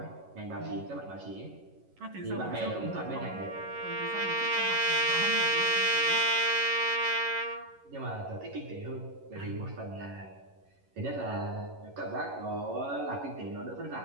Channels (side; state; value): left; late; 11 ms